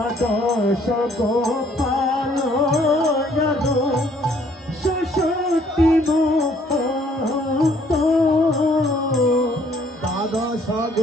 গোপাল ষষ্ঠী দ্বাদশ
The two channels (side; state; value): both; normal; correlation 0.63